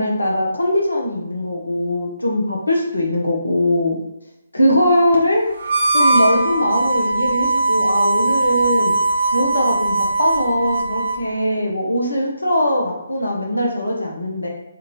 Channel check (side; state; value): both; inverted; correlation -0.83